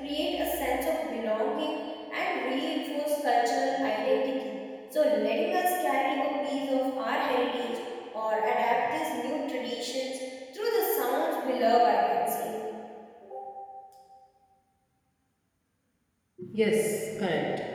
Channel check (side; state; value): both; identical; correlation 1.00